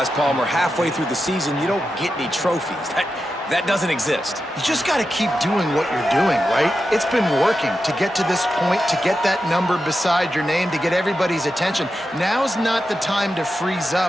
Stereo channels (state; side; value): normal; both; correlation 0.90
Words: Palmer, halfway through the season, you don't get any trophies. That doesn't exist. You just got to keep doing what you're doing, right? It's been working to get to this point, to get that number beside your name, to get everybody's attention. Now's not the time to freeze